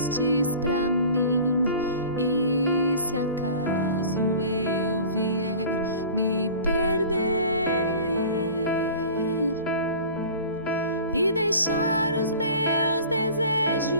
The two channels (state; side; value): inverted; both; correlation -0.42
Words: pra mim. E se acaso eu vier me perder e deixar os meus